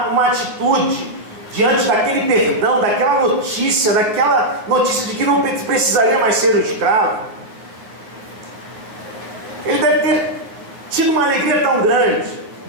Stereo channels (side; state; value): left; late; 9.4 ms